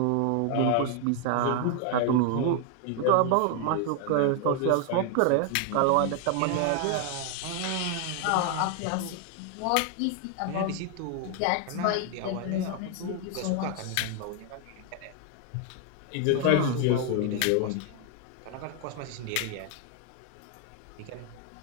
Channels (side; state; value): both; different; correlation 0.00